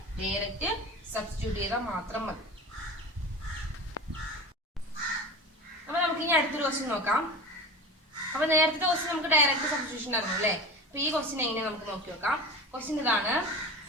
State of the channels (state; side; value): normal; both; correlation 0.32